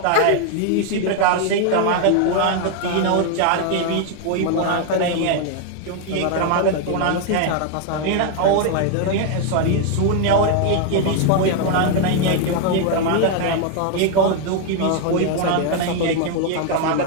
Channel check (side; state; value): both; different; correlation 0.01